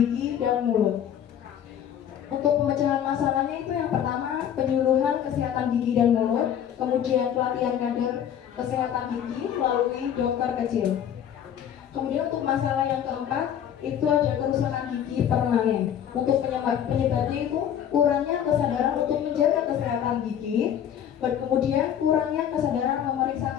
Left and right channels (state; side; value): quieter; right; 9.5 dB